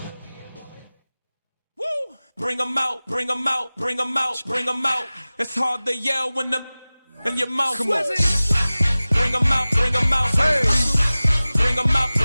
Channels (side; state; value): both; inverted; correlation -0.98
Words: Bring them out, bring them out, bring them out, bring them out. It's hard to yell when the in your mouth. Come on. Bring them out, bring them out. Hey. Bring them out,